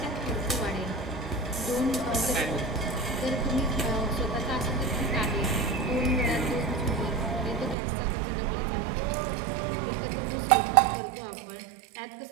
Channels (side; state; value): left; drops out; at 7.8 s